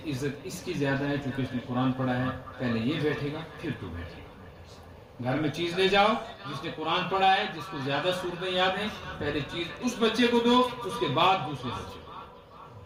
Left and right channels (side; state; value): both; identical; correlation 1.00